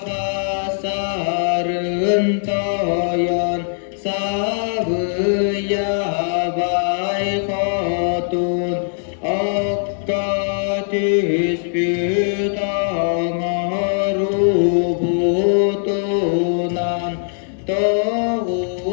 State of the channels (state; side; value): silent; right; 65 dB below the other